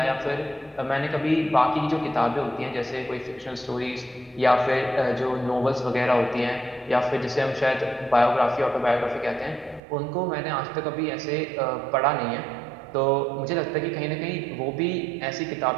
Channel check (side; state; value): left; drops out; at 9.8 s